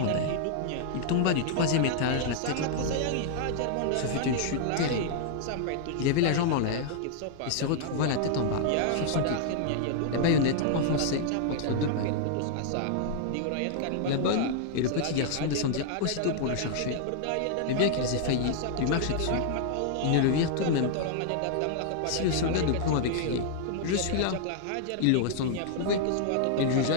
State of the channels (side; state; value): both; different; correlation -0.01